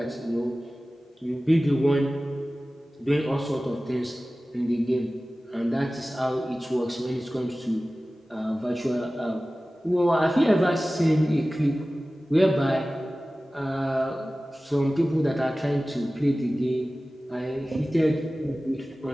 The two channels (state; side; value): normal; both; correlation 0.97